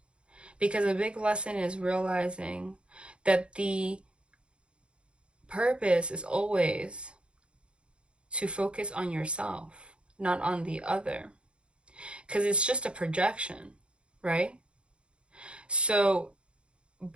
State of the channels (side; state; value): left; late; 0.056 ms